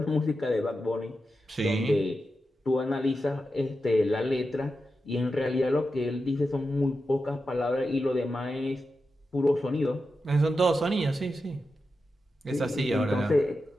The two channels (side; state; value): both; normal; correlation 0.90